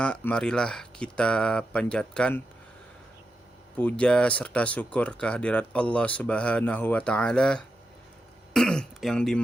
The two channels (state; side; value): normal; both; correlation 0.87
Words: marilah kita panjatkan puja serta syukur kehadirat Allah Subhanahu wa Ta'ala yang